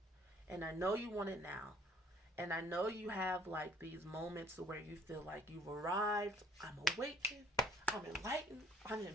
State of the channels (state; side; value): normal; both; correlation 0.57